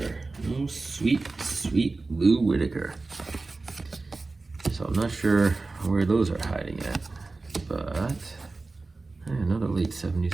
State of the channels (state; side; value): quieter; left; 3.6 dB